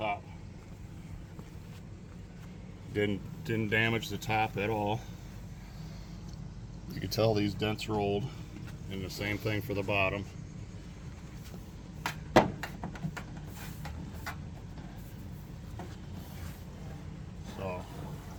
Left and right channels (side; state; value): both; identical; correlation 1.00